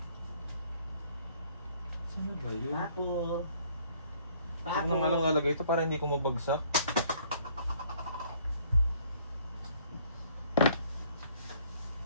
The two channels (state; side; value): inverted; both; correlation -0.61